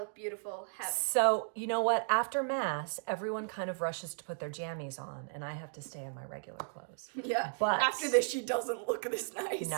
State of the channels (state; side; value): silent; left; digital silence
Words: beautiful. So, you know what? After Mass, everyone kind of rushes to put their jammies on, and I have to stay in my regular clothes. Yeah, but after this, she doesn't look this nice.